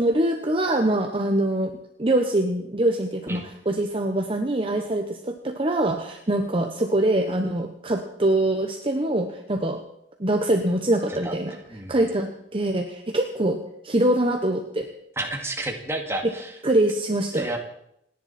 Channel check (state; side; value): normal; both; correlation 0.54